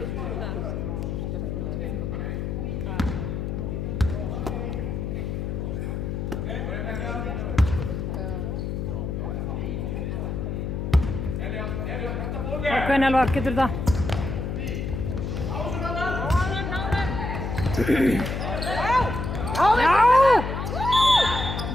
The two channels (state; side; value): noise; left; hum, 3 dB below the sound